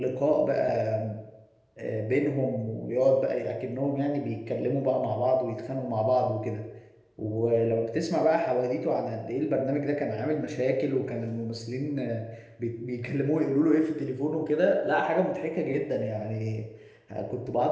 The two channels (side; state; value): both; identical; correlation 1.00